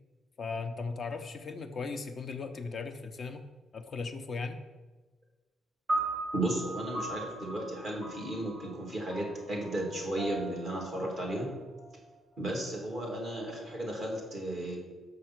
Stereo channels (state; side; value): normal; both; correlation 0.74